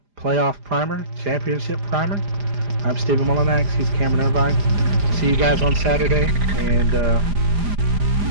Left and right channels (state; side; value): late; left; 4.9 ms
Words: Playoff Primer, Championship Primer. I'm Stephen Mullenax. He's Cameron Irvine. See you guys on Saturday. And